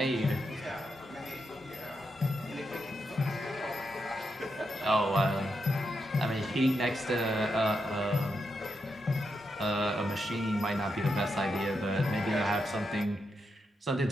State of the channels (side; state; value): both; normal; correlation 0.84